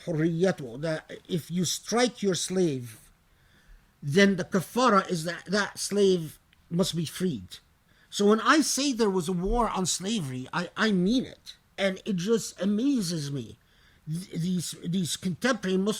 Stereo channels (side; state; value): both; identical; correlation 1.00